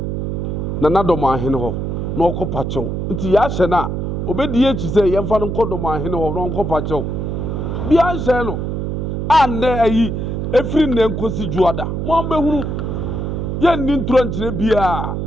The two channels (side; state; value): right; noise; hum, 2 dB below the sound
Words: na dormaahene ho na okɔ pachew nti ya hye na obedi echi se ye mfa no kɔ dormaahene ho na okɔ pachew bia hye no ande ayi efiri ne nkosi juada mo ambehunu ye nni ntro nkyere bia